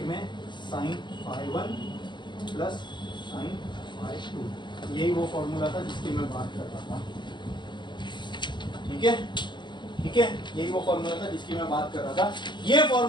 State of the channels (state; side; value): late; right; 0.22 ms